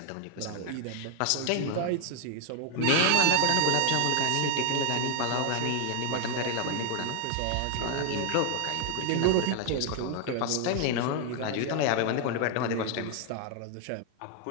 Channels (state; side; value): different; both; correlation 0.00